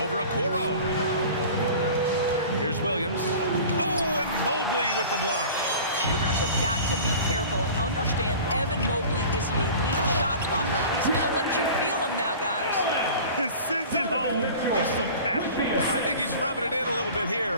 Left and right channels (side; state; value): both; inverted; correlation -0.40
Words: Okoro. Here's Williams. Oh, and Mobley with the block. Shooters have got to be careful and understand Evan Mobley is an elite shot blocker. He's going to let you feel him now, guys. He sends it home with some passion. I think he's rubbing it in a little bit